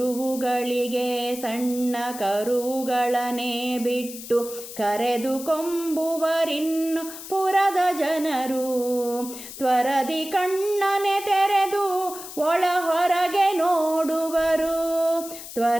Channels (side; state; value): left; noise; hiss, 12 dB below the sound